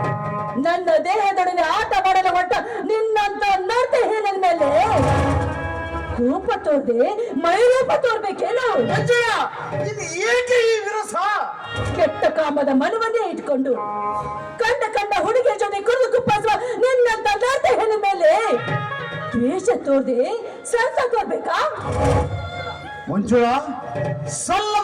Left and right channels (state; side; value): identical; both; correlation 1.00